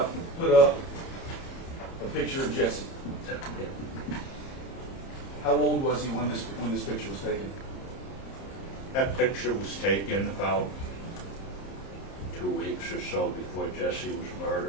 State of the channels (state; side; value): late; right; 30 ms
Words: put up a picture of Jesse. How old was he when this picture was taken? That picture was taken about 2 weeks or so before Jesse was